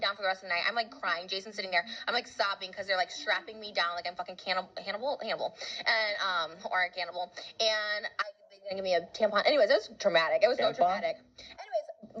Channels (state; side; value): identical; both; correlation 1.00